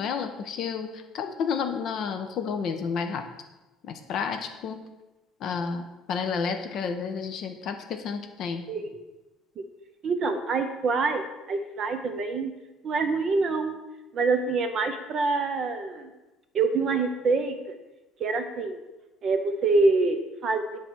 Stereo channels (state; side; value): normal; both; correlation 0.62